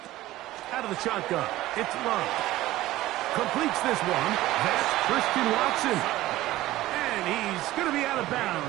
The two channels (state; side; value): quieter; left; 16.2 dB